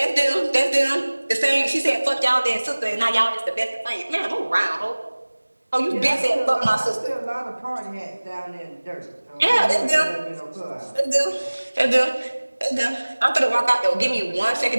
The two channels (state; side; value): inverted; both; correlation -1.00